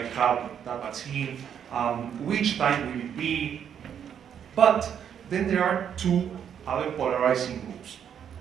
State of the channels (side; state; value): left; quieter; 8.6 dB